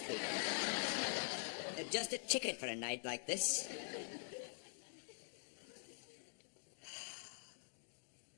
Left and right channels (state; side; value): silent; right; digital silence